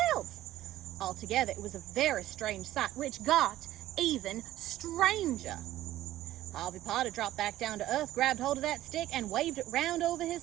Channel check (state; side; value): quieter; left; 14.3 dB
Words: Altogether, it was a very strange sight, which got even stranger. Harvey Potter dropped back down to earth, grabbed hold of that stick, and waved it round over